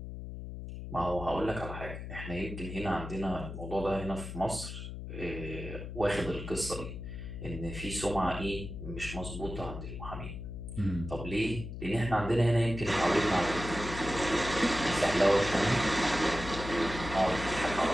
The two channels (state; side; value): noise; left; hum, 8 dB below the sound